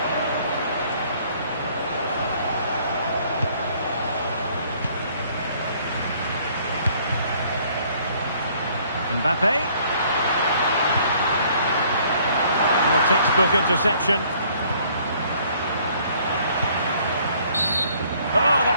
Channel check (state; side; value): inverted; both; correlation -0.61